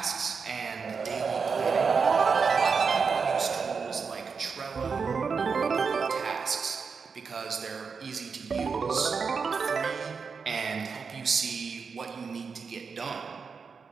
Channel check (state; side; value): quieter; left; 5.4 dB